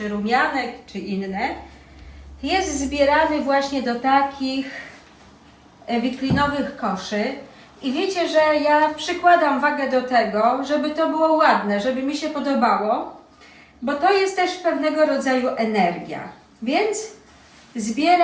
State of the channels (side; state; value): both; identical; correlation 1.00